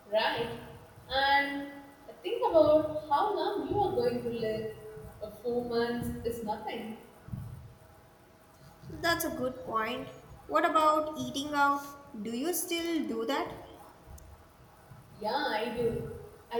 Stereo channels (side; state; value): both; identical; correlation 1.00